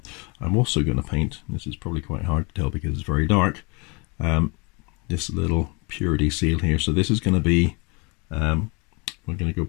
I'm also going to paint, this is probably quite hard to tell because it's very dark, this little purity seal here. So this is going to be, we're going to go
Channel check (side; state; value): right; quieter; 29.9 dB